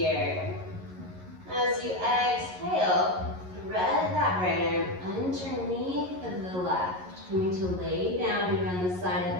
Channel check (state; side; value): late; left; 11 ms